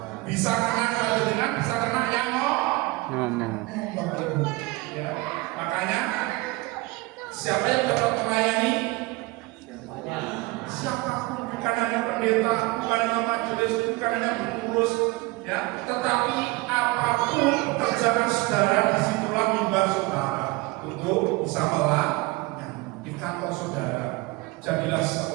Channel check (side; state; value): left; quieter; 21.9 dB